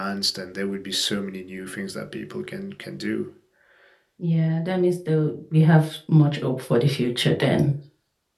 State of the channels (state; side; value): identical; both; correlation 1.00